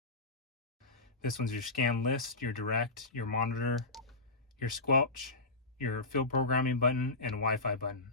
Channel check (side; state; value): right; quieter; 3.2 dB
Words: This one's your scan list, your direct, your monitor, your squelch, your field programming button, and Wi-Fi button.